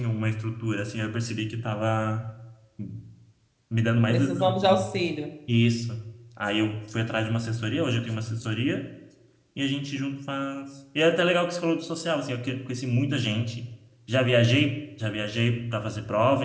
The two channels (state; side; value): identical; both; correlation 1.00